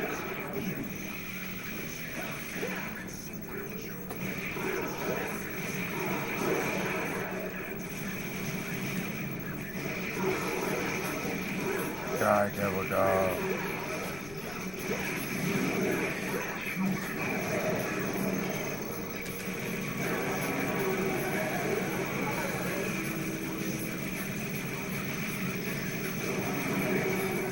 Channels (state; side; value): noise; left; rumble, 14 dB below the sound